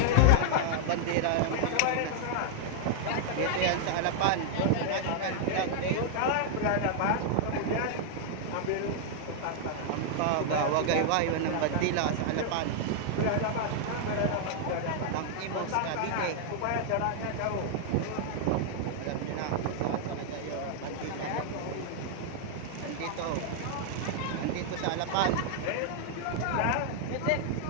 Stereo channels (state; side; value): different; both; correlation -0.01